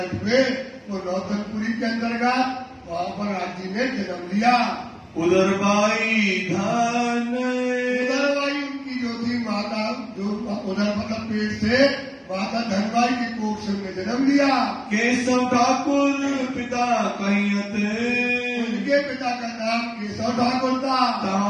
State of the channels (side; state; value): both; identical; correlation 1.00